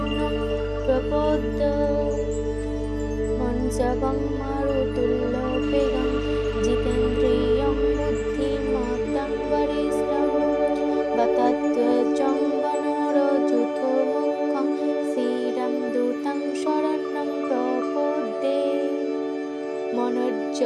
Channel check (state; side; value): identical; both; correlation 1.00